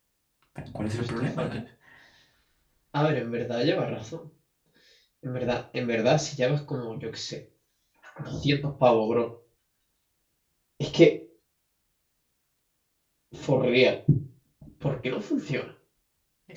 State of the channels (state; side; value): identical; both; correlation 1.00